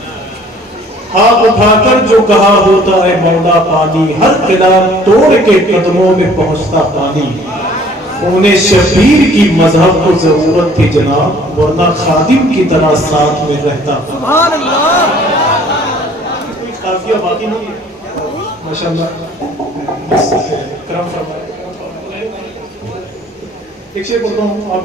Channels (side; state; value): both; normal; correlation 0.55